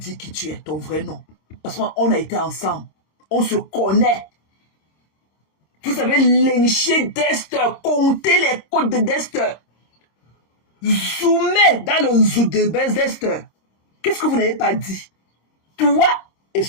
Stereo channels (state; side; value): late; right; 25 ms